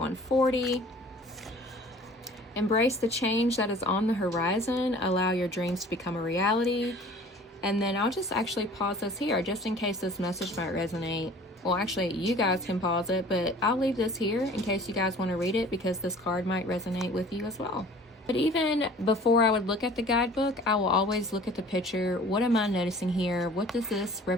Embrace the change that is on the horizon. Allow your dreams to become a reality. And then I'll just actually pause this here just in case this message might resonate. Well, actually, you guys can pause it, but I'll leave this here in case you guys want to read it because this card might resonate with you as well. But even before I would look at the guidebook, I will always look at the picture. What am I noticing here? What does this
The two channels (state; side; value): normal; both; correlation 0.47